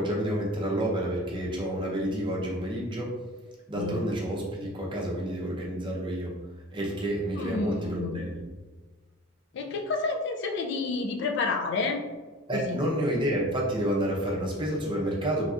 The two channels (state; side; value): normal; both; correlation 0.40